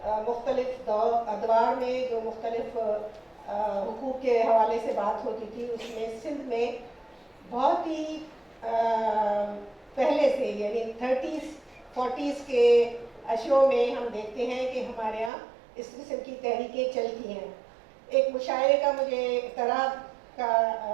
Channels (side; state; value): left; drops out; at 15.3 s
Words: مختلف ادوار میں جو مختلف حقوق کے حوالے سے بات ہوتی تھی، اس میں سندھ میں بہت ہی پہلے سے، یعنی 30s 40s کے اشروں میں ہم دیکھتے ہیں کہ ہمارے یہاں اس قسم کی تحریکیں چلتی ہیں۔ ایک مشاعرے کا مجھے اعتراض کا